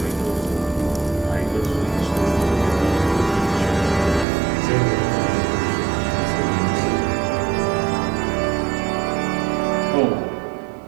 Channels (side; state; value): left; drops out; at 4.2 s